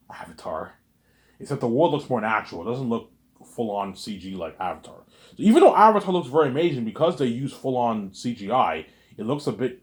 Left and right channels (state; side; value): identical; both; correlation 1.00